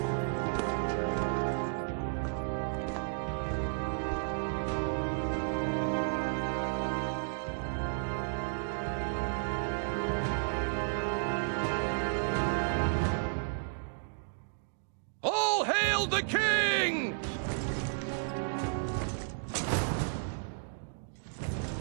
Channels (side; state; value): left; silent; digital silence